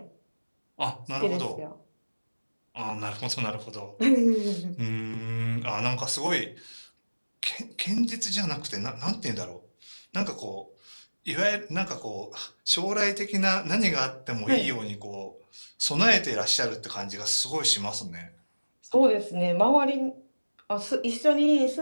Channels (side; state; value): both; inverted; correlation -1.00